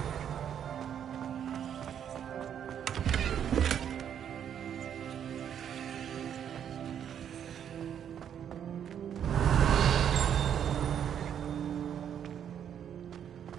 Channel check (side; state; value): left; quieter; 9.0 dB